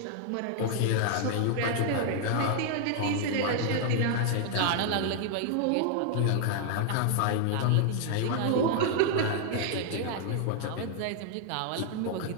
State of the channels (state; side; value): different; both; correlation 0.00